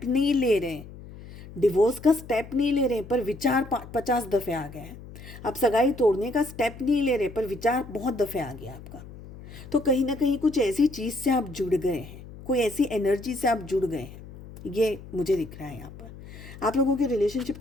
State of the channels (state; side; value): noise; left; hum, 16 dB below the sound